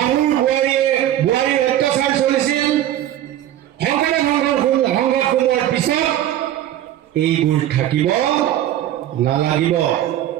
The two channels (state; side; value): quieter; left; 12.4 dB